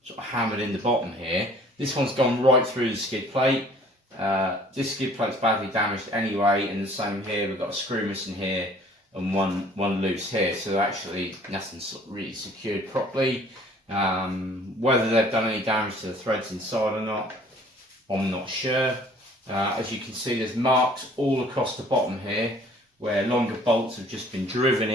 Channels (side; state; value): both; normal; correlation 0.54